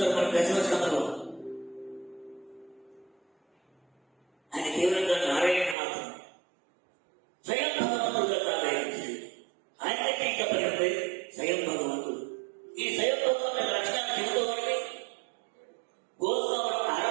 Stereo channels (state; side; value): drops out; left; at 5.8 s